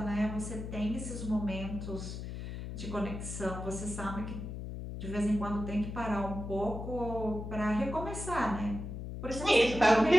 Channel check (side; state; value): left; noise; hum, 7 dB below the sound